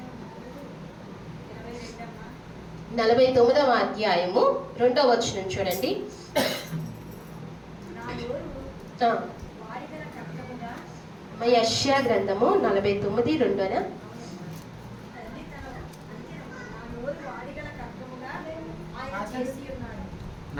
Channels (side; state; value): both; identical; correlation 1.00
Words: 49వ అధ్యాయము 2వ వచనం చూడండి. యెషయా గ్రంథము 49:2.